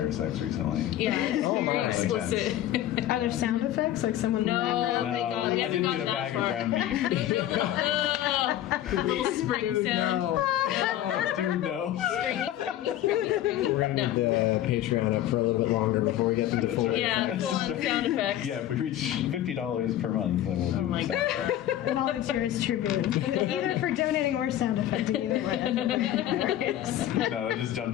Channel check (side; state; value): right; quieter; 12.5 dB